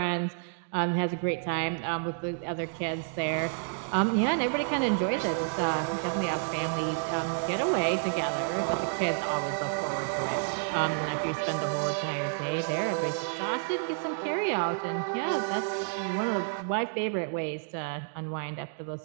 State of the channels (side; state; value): left; silent; digital silence